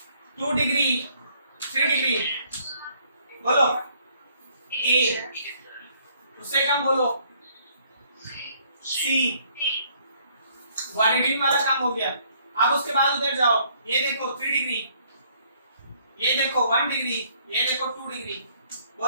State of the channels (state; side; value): inverted; both; correlation -0.64